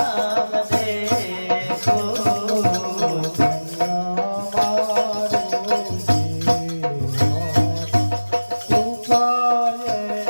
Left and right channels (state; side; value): inverted; both; correlation -1.00